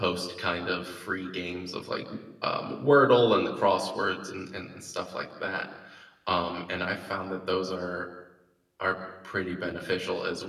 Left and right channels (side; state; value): both; identical; correlation 1.00